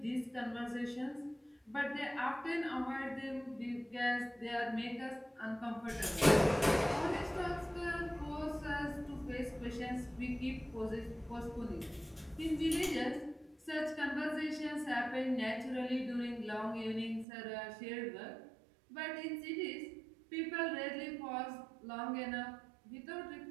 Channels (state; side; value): drops out; left; at 17.2 s